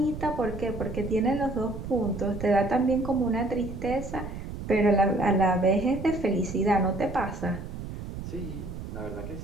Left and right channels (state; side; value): noise; right; rumble, 8 dB below the sound